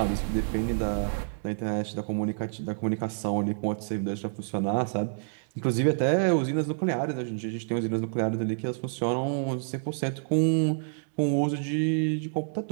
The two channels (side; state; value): left; silent; digital silence